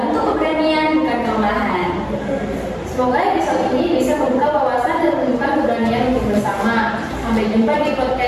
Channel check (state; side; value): identical; both; correlation 1.00